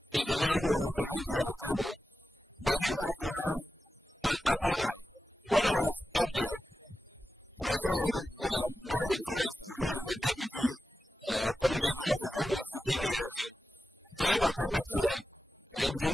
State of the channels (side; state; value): both; normal; correlation 0.92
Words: is the man who will represent you at the table. But you have to have an upper eye. When I was up there, I saw Edu Boahin, for instance, who is a deputy communication officer who is seeking re-election, climb atop a chair and